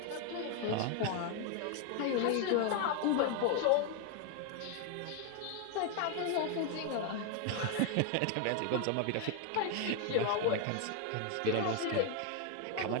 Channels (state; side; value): different; both; correlation 0.01